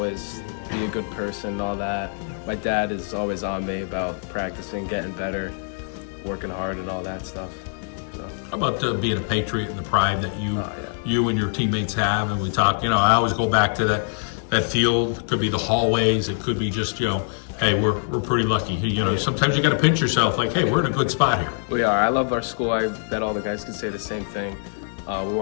be a good person and all that. My dad is always on me about practicing, getting better, working hard and all that stuff. So. How about being a Patriot and the pride that you and your teammates have? And we talk, I always go back to that field. It could be the hallways. It could be just, hey, we're pretty lucky. Sometimes you got to pinch yourself like, hey, we're in a good spot here. We are. I love our school. I bet all the guys can say the same thing. We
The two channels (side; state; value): right; silent; 63 dB below the other